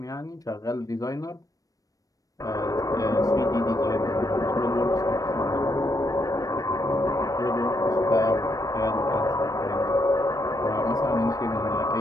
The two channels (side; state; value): right; late; 0.17 ms